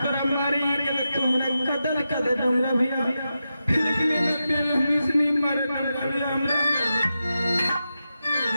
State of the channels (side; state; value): both; inverted; correlation -0.89